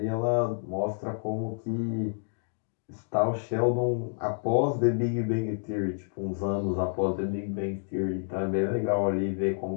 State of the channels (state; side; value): silent; right; digital silence